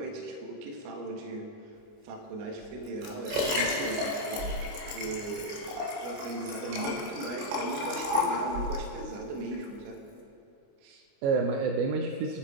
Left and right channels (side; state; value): left; late; 28 ms